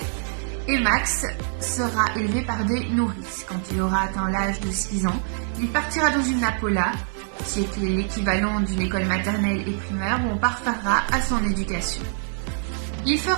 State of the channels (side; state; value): left; silent; digital silence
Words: Et Max sera élevé par des nourrices. Quand il aura atteint l'âge de 6 ans, il partira dans une Napola, qui est l'équivalent d'une école maternelle et primaire, où on parfera à son éducation. Il